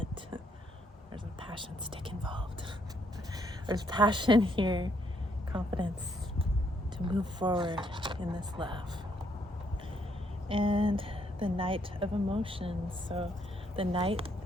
there's a passion stick involved. There's passion here, confidence to move forward in this love. And the Knight of Emotions. So the Knight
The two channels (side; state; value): both; normal; correlation 0.71